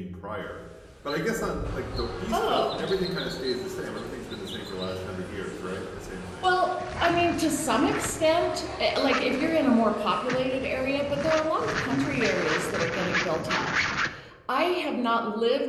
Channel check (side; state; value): both; identical; correlation 1.00